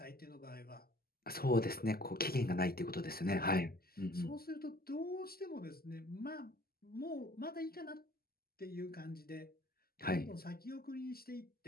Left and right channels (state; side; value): late; right; 0.44 ms